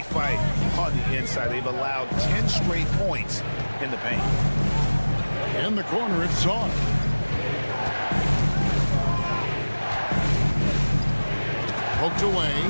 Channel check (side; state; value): both; inverted; correlation -1.00